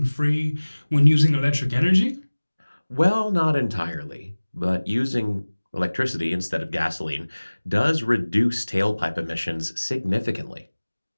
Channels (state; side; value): inverted; both; correlation -1.00